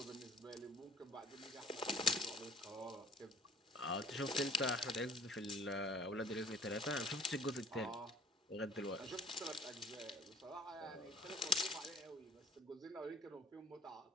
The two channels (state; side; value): normal; both; correlation 0.51